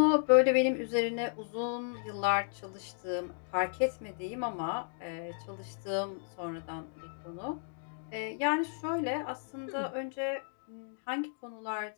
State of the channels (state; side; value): silent; right; digital silence